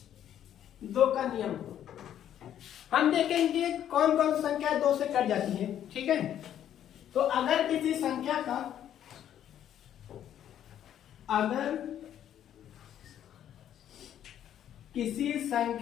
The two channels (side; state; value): right; quieter; 10.5 dB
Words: हम देखेंगे कौन कौन सी संख्या 2 से कट जाती है। ठीक है, तो अगर किसी संख्या का